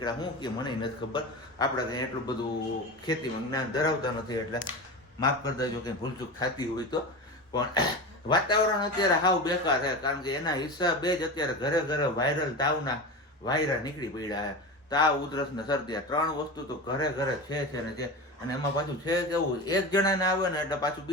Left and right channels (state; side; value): normal; both; correlation 0.26